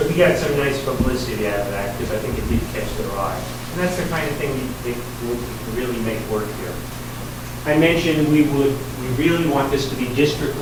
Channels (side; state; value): both; identical; correlation 1.00